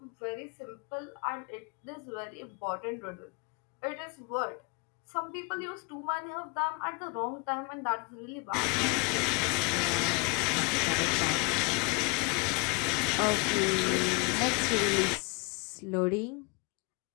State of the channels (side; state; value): right; quieter; 30.3 dB